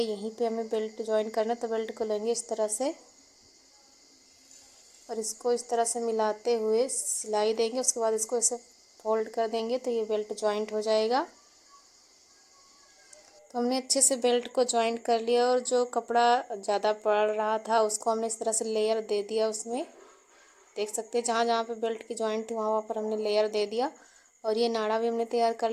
यहीं पे हमें बेल्ट जॉइंट करना है। तो बेल्ट को लेंगे इस तरह से और इसको इस तरह से मिलाते हुए सिलाई देंगे। उसके बाद इसको ऐसे फोल्ड कर देंगे तो ये बेल्ट जॉइंट हो जाएगा। तो हमने अच्छे से बेल्ट को जॉइंट कर लिया और जो कपड़ा ज़्यादा पड़ रहा था उसको हमने इस तरह से लेयर दे दिया उसमें। देख सकते हैं जहाँ जहाँ पे बेल्ट की जॉइंट थी वहाँ वहाँ पर हमने लेयर दे दिया और ये नाड़ा भी हमने तैयार कर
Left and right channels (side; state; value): both; identical; correlation 1.00